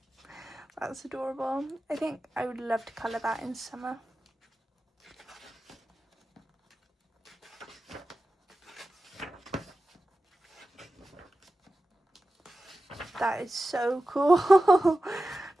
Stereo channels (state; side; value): normal; both; correlation 0.94